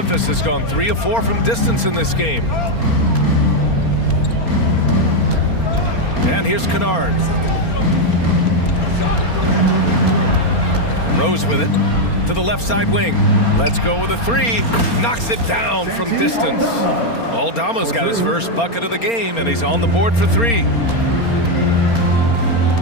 has gone 3 of 4 from distance in this game. And here's Kennard. Rose with it to the left side wing. Let's go with a 3. Knocks it down from distance. Aldama's got his first bucket of the game, and he's on the board for 3.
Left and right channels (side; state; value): right; late; 4.3 ms